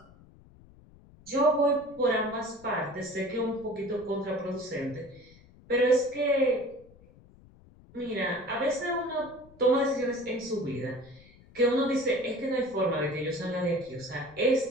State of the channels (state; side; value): noise; left; rumble, 24 dB below the sound